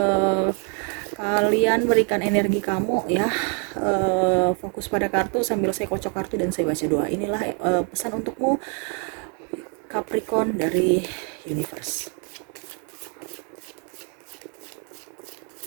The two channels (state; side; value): quieter; left; 39.0 dB